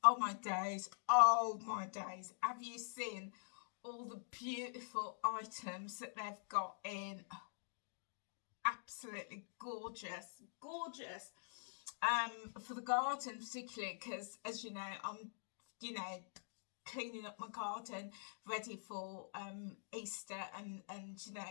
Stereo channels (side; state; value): right; silent; digital silence